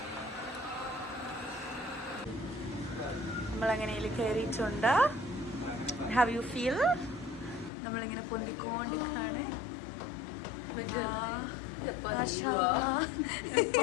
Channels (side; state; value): right; drops out; at 7.7 s